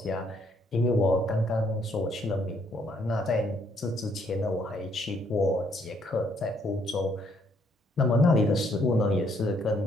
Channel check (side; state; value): both; normal; correlation 0.69